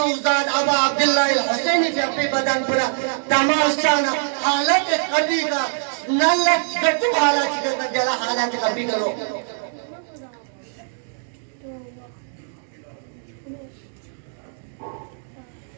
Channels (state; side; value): silent; left; digital silence